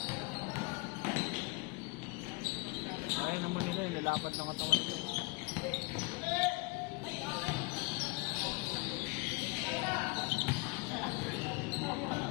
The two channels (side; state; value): right; quieter; 26.8 dB